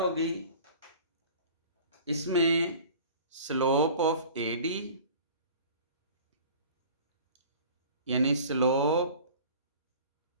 इसमें स्लोप ऑफ AD यानी स्लोप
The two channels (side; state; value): both; inverted; correlation -0.44